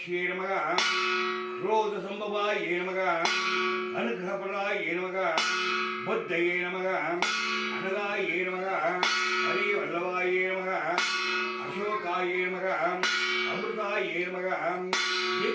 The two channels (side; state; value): both; identical; correlation 1.00